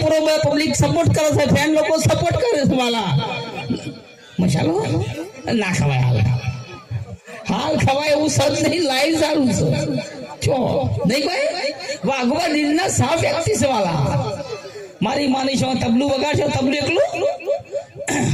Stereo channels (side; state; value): both; identical; correlation 1.00